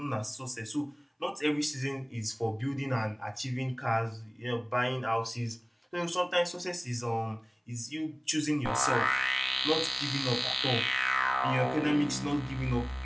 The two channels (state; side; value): identical; both; correlation 1.00